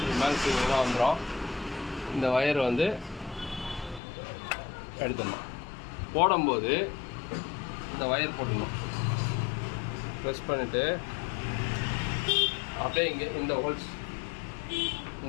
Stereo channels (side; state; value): right; drops out; at 4.0 s